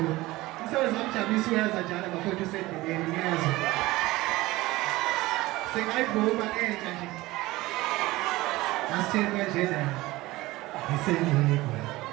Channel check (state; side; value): quieter; left; 19.1 dB